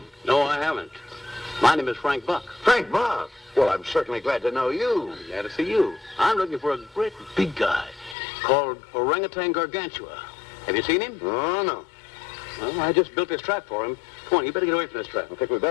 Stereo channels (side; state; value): right; drops out; at 8.2 s